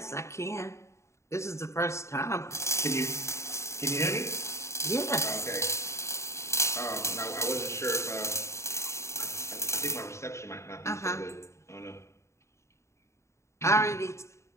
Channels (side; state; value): right; late; 0.14 ms